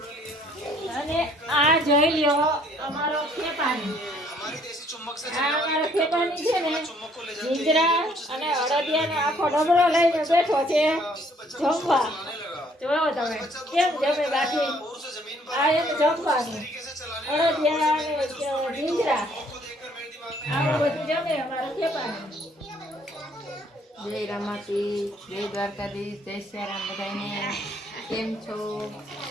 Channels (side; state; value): both; normal; correlation 0.63